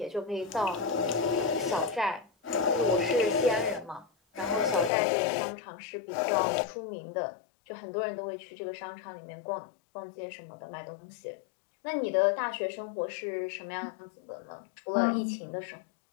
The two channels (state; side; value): drops out; right; at 4.9 s